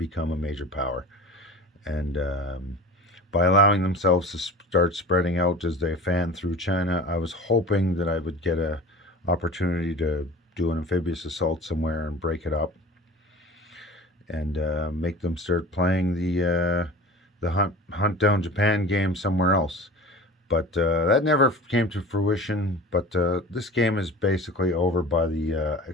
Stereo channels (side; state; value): both; normal; correlation 0.37